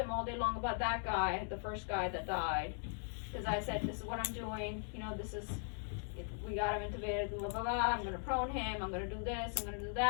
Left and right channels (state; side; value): silent; right; 52 dB below the other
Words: all day long about that guy, the first guy that died. Because I said, this is what I'm doing, you know, we got him intubated, blah, blah, blah, I'm going to prone him, I'm going to do this, I'm going to do